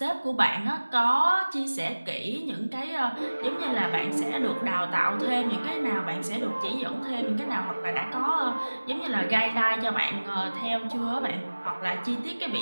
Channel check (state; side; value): inverted; both; correlation -1.00